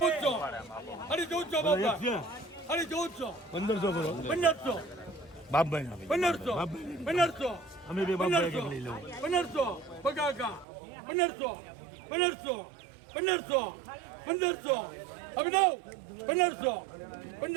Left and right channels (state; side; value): drops out; left; at 10.7 s